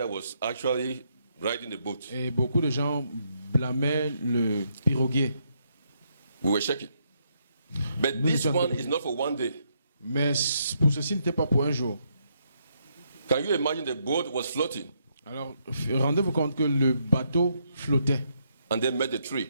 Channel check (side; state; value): both; inverted; correlation -0.76